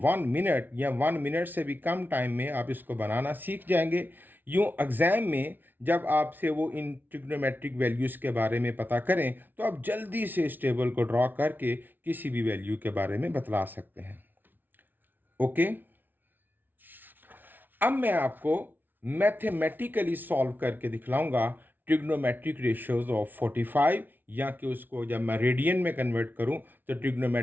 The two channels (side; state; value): left; late; 0.089 ms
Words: मिनट या 1 मिनट से भी कम टाइम में आप इसको बनाना सीख जाएंगे। यूं एग्जाम में जब आपसे वो इन ट्रिग्नोमेट्रिक वैल्यूज़ के बारे में पता करें तो आप जल्दी से इस टेबल को ड्रॉ करके किसी भी वैल्यू के बारे में बतला सकते हैं। ओके, अब मैं आपको मैथमेटिकली सॉल्व करके दिखलाऊंगा ट्रिग्नोमेट्रिक रेशियोज ऑफ 45, या कि उसको जब मैं रेडियन में कन्वर्ट करूं तो